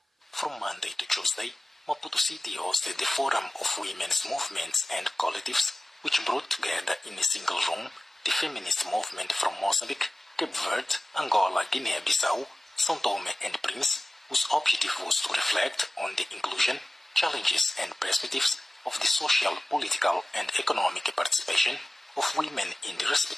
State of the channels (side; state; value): both; normal; correlation 0.96